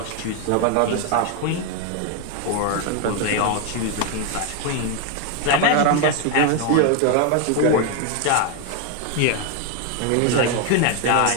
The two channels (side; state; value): both; different; correlation 0.01